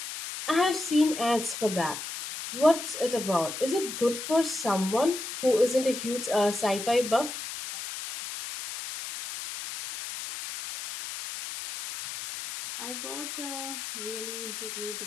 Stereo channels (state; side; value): noise; left; hiss, 7 dB below the sound